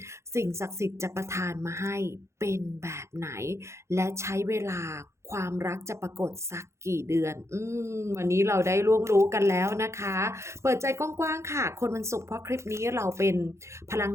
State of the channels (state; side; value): late; left; 0.14 ms